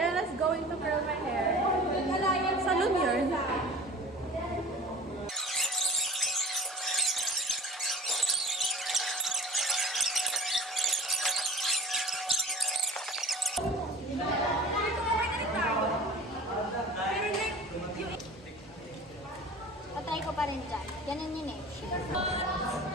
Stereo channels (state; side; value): normal; both; correlation 0.42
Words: going to curl my hair. Salon yun. Patry ko pa rin dyan. Ganun yun eh.